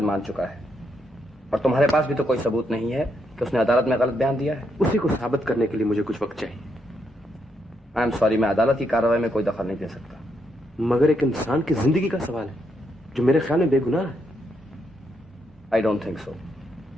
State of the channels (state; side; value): normal; both; correlation 0.78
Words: मान चुका है और तुम्हारे पास भी तो कोई सबूत नहीं है कि उसने अदालत में गलत बयान दिया है? उसी को साबित करने के लिए मुझे कुछ वक्त चाहिए। आई एम सॉरी, मैं अदालत की कार्रवाई में कोई दखल नहीं दे सकता। मगर एक इंसान की जिंदगी का सवाल है जो मेरे ख्याल में बेगुनाह है। I don't think so.